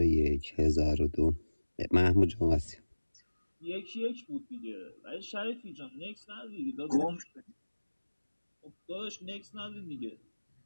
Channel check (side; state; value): both; inverted; correlation -1.00